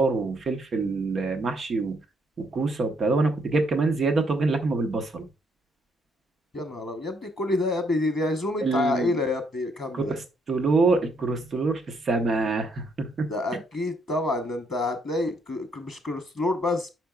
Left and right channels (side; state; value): both; normal; correlation 0.71